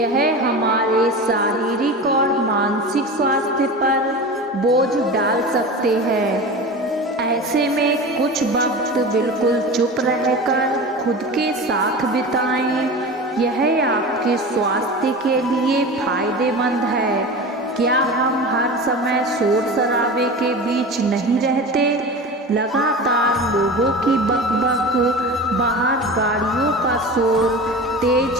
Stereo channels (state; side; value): normal; both; correlation 0.31